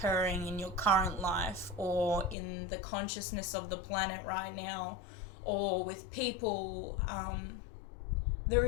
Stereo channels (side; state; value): right; drops out; at 2.4 s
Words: in your current life or in the consciousness of the planet right now or with people, there